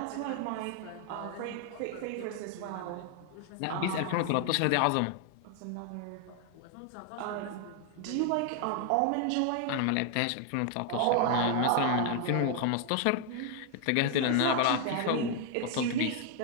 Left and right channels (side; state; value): both; different; correlation 0.00